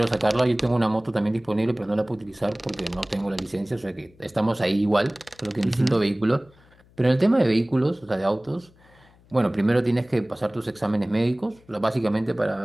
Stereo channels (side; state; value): left; noise; hum, 29 dB below the sound